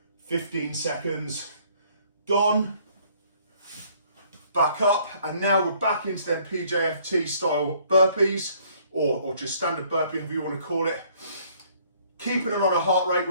15 seconds, gone, back up, and now we're back into them PJFT style burpees, or just standard burpee, however you want to call it. Keeping an on a heart rate,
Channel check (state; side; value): inverted; both; correlation -0.61